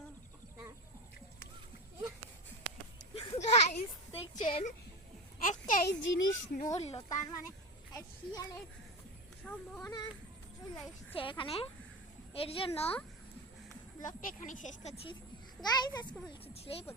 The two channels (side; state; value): both; normal; correlation 0.22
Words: একটা গাইস দেখছেন একটাই জিনিস নড়লো, তার মানে শিয়ালের সম্ভাবনা চলে এসছে এখানে। এর জন্য ব্লগটা এখানে শেষ করছি গাইস। আজকে বলছি ছিল এই